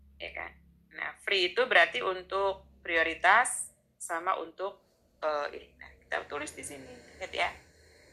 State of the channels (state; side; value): identical; both; correlation 1.00